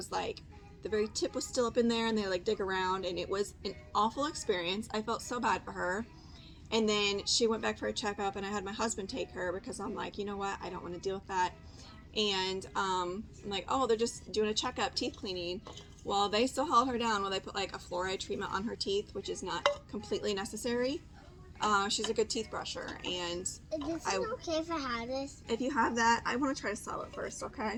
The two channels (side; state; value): both; identical; correlation 1.00